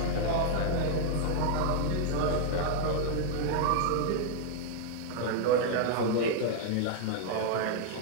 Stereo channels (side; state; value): both; different; correlation 0.00